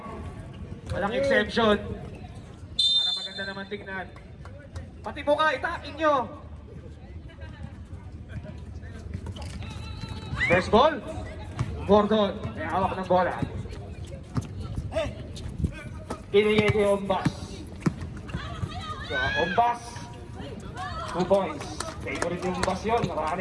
Walang exception. Para maganda naman tignan. Pati buka, itakin nyo. First ball. Gordon. May hawak ng bola. Pinigay kay Ombas. So, Ombas. 2 points. Favorite yung Ombas yun.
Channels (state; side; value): identical; both; correlation 1.00